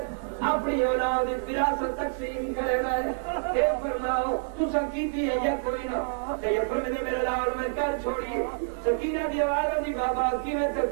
अपनी औलाद विरासत तकसीम करेगा ये फरमाओ तू संकीती है या कोई ना ये फरमाने मेरा लाल मैं कर छोड़ी सकीना दी आवाज दी बाबा की मैं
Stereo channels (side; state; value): left; silent; digital silence